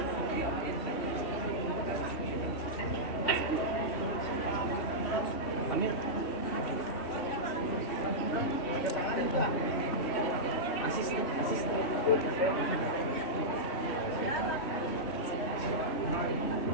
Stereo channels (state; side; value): late; right; 3.1 ms